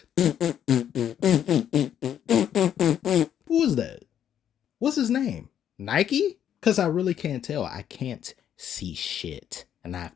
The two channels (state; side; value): quieter; right; 9.7 dB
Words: who is that? What's his name? Nike? Because I really can't tell. I can't see shit. And I have